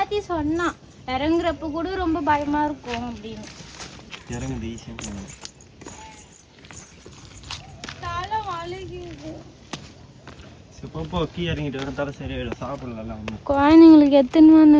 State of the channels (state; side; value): identical; both; correlation 1.00